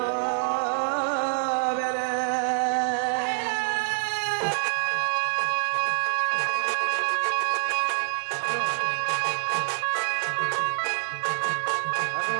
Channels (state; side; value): silent; left; digital silence